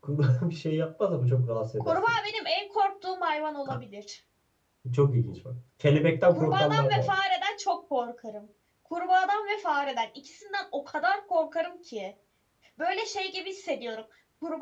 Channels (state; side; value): identical; both; correlation 1.00